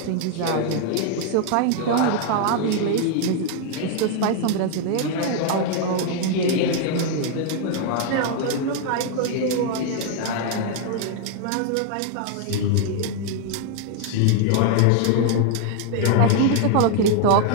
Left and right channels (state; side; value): different; both; correlation 0.00